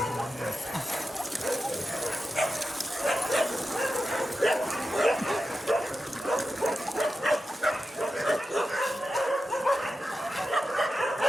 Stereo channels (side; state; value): both; normal; correlation 0.91